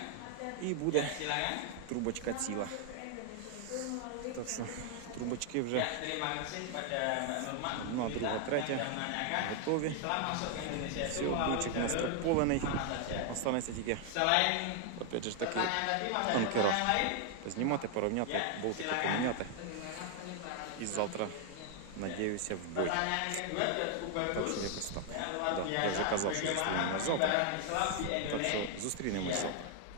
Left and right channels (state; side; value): different; both; correlation 0.00